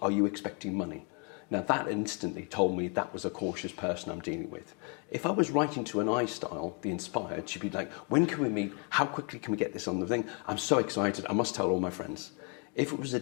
Are you expecting money? Now that instantly told me that was a cautious person I'm dealing with. If I was writing to an I style, the inspired, she'd be like, when can we meet? How quickly can we get this on the thing? I'm so excited, I must tell all my friends. If it was a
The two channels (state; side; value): quieter; right; 34.1 dB